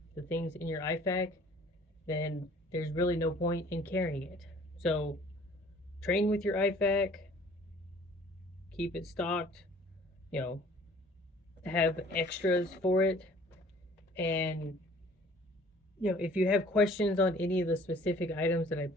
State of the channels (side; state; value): both; normal; correlation 0.53